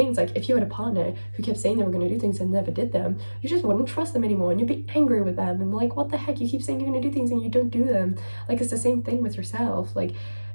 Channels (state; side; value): inverted; both; correlation -1.00